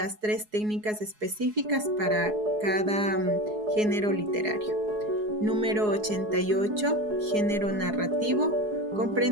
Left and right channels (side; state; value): left; late; 4.7 ms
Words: 3 técnicas específicas para cada género literario. Número 88, género narrativo,